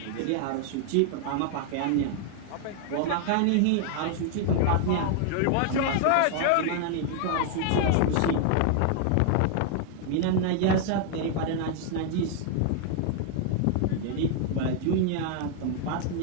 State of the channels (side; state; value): both; different; correlation 0.00